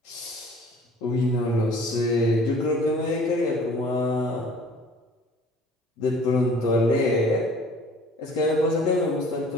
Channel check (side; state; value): both; normal; correlation 0.51